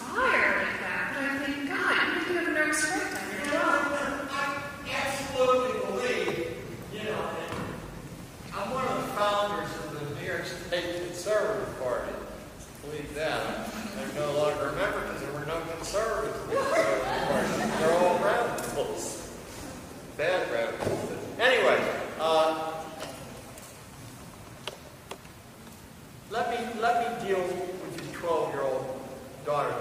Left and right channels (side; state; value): both; identical; correlation 1.00